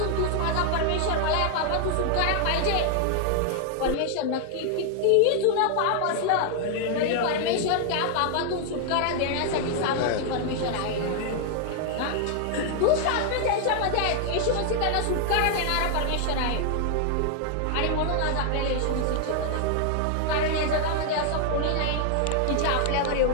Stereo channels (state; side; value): different; both; correlation 0.00